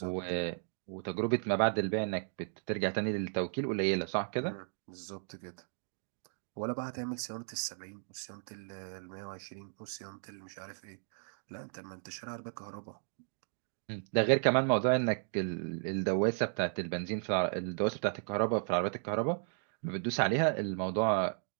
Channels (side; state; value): left; silent; 54 dB below the other